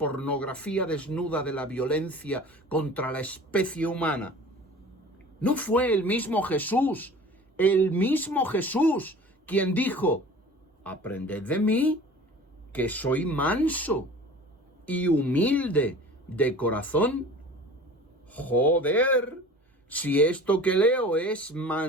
desnuda de la violencia contra la especie humana? ¿No fue el mismo Jesús, quien dijo: aprended de mí, que soy manso y humilde de corazón? Joder, si esto que leo es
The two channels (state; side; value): normal; both; correlation 0.42